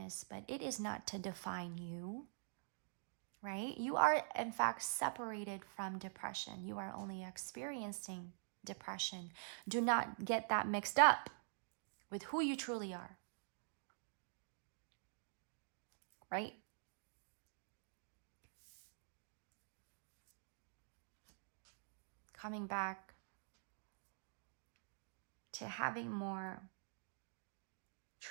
but it is not to define you, right? You are, in fact, separated from depression. You are only experiencing depression. Do not get that mixed up with who you truly are. Right? Coming back to having more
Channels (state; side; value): silent; left; digital silence